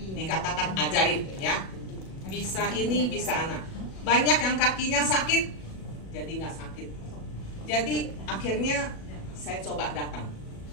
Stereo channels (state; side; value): late; right; 37 ms